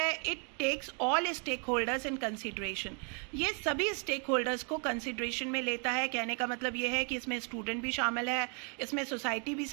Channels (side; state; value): left; quieter; 38.8 dB